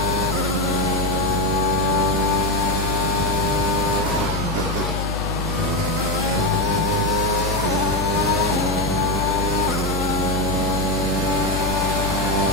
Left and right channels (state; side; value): noise; left; hum, 3 dB below the sound